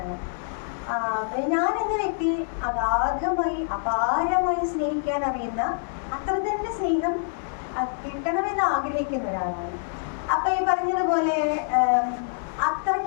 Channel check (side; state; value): right; silent; digital silence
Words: ഞാൻ എന്ന വ്യക്തി അഗാധമായി അപാരമായി സ്നേഹിക്കാൻ അറിയുന്ന, അത്ര തന്നെ സ്നേഹം കിട്ടണമെന്ന് ആഗ്രഹിക്കുന്ന ഒരാളാണ്. അപ്പൊ ഈ പറഞ്ഞതുപോലെ